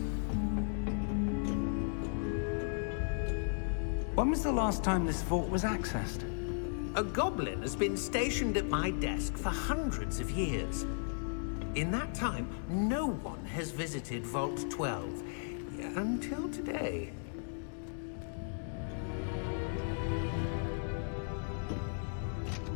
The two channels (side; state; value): right; silent; digital silence